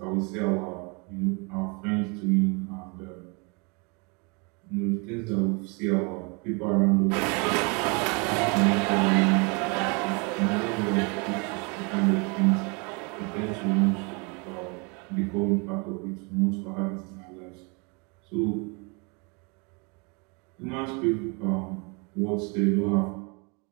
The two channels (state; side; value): quieter; left; 31.8 dB